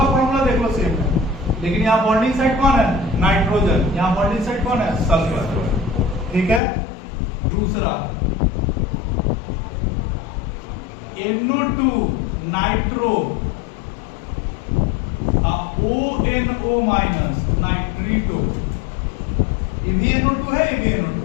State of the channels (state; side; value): drops out; right; at 6.6 s